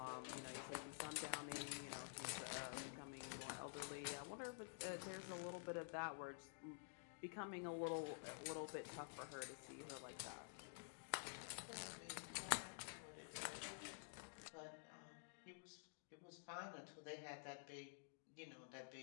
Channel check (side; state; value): right; silent; digital silence